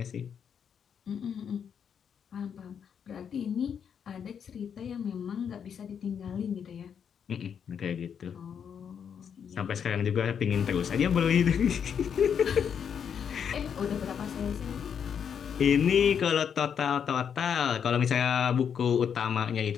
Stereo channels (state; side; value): quieter; right; 7.6 dB